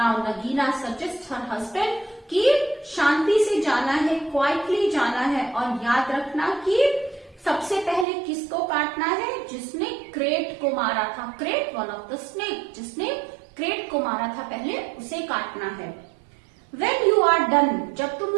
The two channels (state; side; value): drops out; left; at 8.1 s